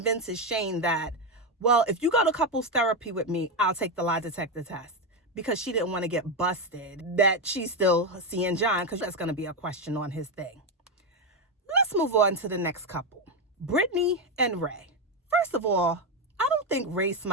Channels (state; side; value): normal; both; correlation 0.08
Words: Shane that, well, if you go to couples therapy with me, I'll take the lie detector test, because she didn't want to get busted that she's still seeing John, because that's going to be a question on his thing. Let's move on to the next couple, Brittany and Ray. First of all, I don't think Ray